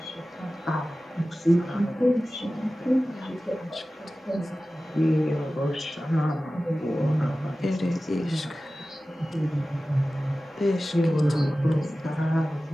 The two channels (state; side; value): normal; both; correlation 0.96